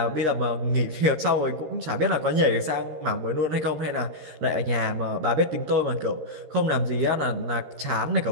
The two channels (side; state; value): left; late; 13 ms